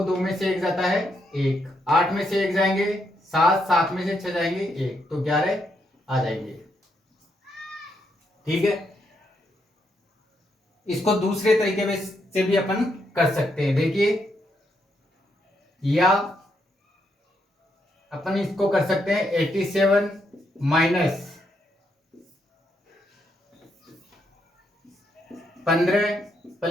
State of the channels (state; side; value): normal; both; correlation 0.78